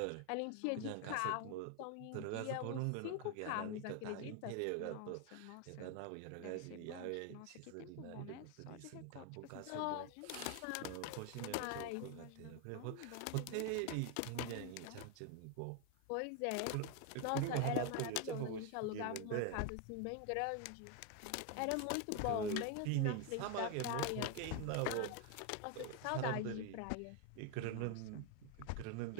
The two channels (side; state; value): both; different; correlation 0.01